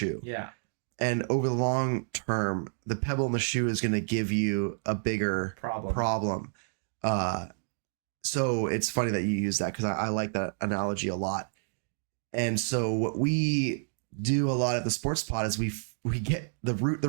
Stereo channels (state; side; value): silent; left; digital silence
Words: Yeah. And over the long term, the pebble in the shoe is going to give you a bigger problem. So it's funny that you use that because I like that analogy a lot. And so what we do a lot at the Sports Pod is we get the root